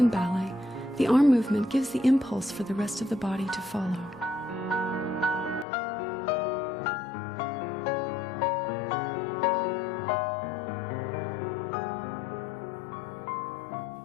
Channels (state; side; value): drops out; right; at 5.7 s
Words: ballet, the arm movement gives the impulse for the rest of the body to follow.